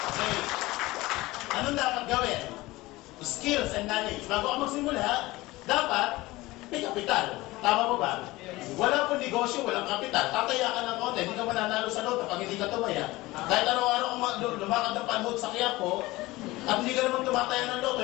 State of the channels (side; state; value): right; quieter; 19.6 dB